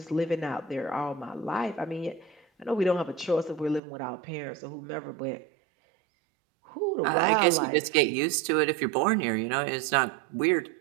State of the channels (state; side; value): drops out; left; at 3.8 s